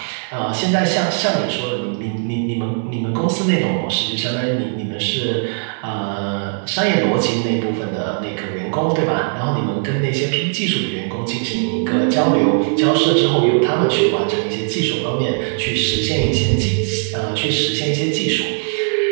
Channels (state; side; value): silent; left; 67 dB below the other